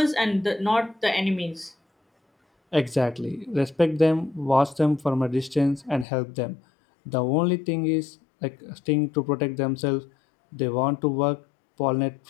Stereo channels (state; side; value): drops out; right; at 6.1 s